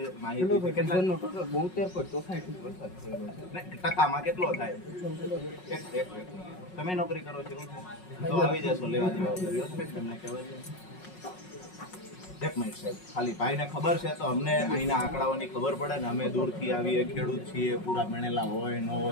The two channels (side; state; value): right; late; 5.4 ms